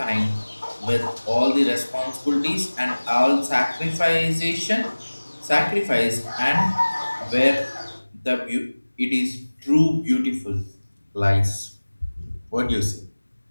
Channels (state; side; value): inverted; both; correlation -1.00